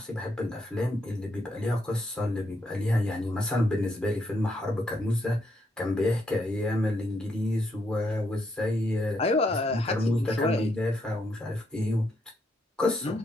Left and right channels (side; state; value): both; normal; correlation 0.77